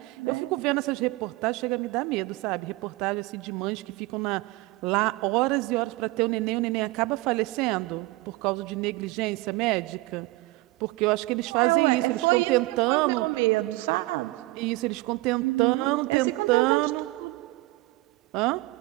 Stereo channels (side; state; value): left; quieter; 21.1 dB